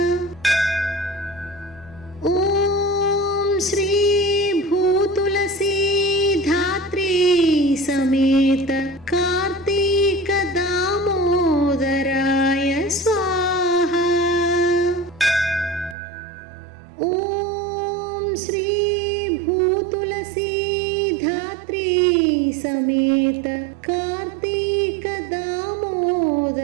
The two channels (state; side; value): drops out; left; at 16.0 s